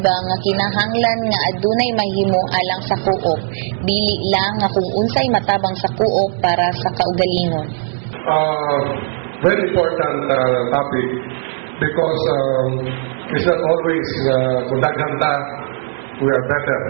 nga kinahanglan nga adunay mahimo alang sa coop, dili lang nga kung unsay matabang sa coop para sa kaugalingon. Very important topic because it's not always kung daghanta we are better.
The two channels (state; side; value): silent; left; 68 dB below the other